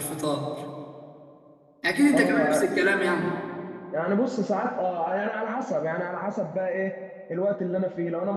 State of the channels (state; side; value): identical; both; correlation 1.00